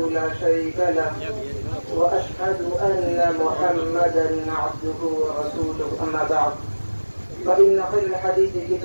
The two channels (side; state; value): both; inverted; correlation -1.00